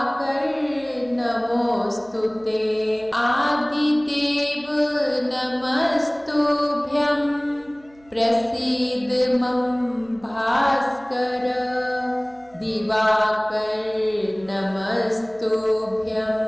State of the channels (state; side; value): noise; right; hum, 29 dB below the sound